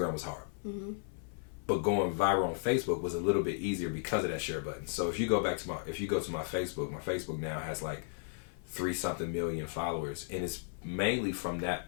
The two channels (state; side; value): silent; right; 55 dB below the other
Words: was hard. But going viral on Facebook was a little bit easier because of that share button. So if you go to my Facebook now has like 3-something million followers, and it's mainly from that